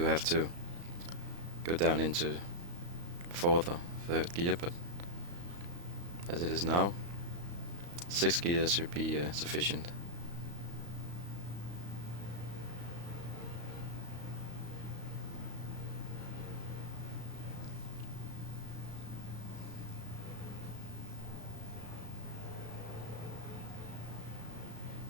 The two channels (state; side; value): late; left; 35 ms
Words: have to go down into 4th or 3rd gear, but as it is now, 6th gear should be sufficient.